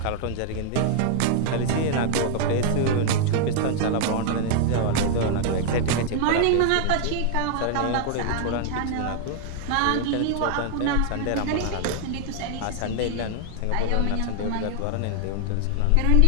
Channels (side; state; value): both; different; correlation 0.00